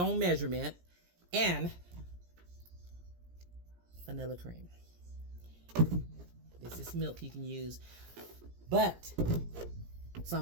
own measurement, and vanilla cream. This is milk you can use, but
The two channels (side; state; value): left; late; 17 ms